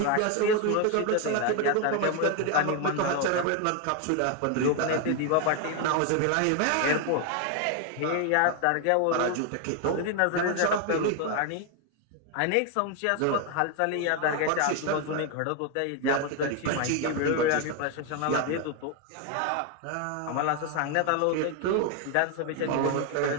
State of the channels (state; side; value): different; both; correlation 0.01